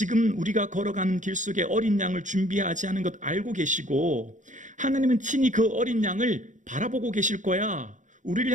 우리가 걸어가는 길 속에 어린 양을 준비하지 않은 것 알고 계시고 하나님은 친히 그 어린 양을 바라보고 계실 거야. 우리를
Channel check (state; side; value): late; left; 0.36 ms